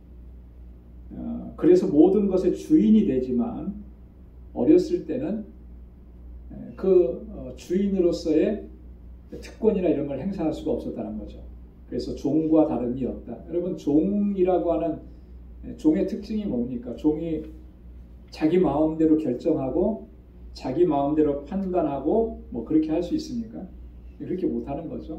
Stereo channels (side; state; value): both; identical; correlation 1.00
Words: 그래서 모든 것의 주인이 되지만 어렸을 때는 그 주인으로서의 특권이나 이런 걸 행사할 수가 없었다는 거죠. 그래서 종과 다름이 없다. 여러분, 종이라고 하는 종의 특징이 뭡니까? 종이 자기 마음대로 결정하고 자기 마음대로 판단하고 뭐 그렇게 할 수 있습니까? 그렇게 못하는